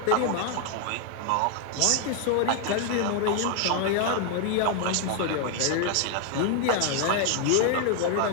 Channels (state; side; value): different; both; correlation 0.00